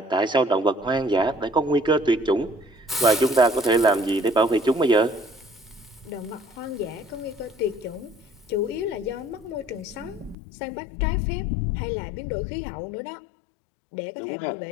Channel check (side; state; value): right; drops out; at 10.4 s